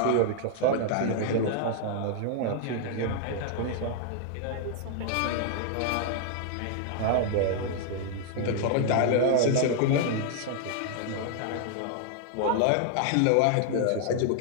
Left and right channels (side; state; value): both; different; correlation 0.00